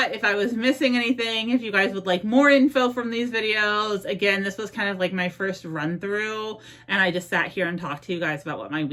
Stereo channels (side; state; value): both; identical; correlation 1.00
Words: if I was missing anything, if you guys would like more info from these videos. Again, this was kind of like my first run through, and I just sat here and talked to you guys about what my